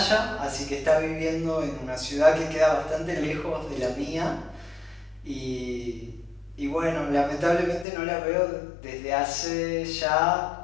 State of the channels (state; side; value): drops out; right; at 7.9 s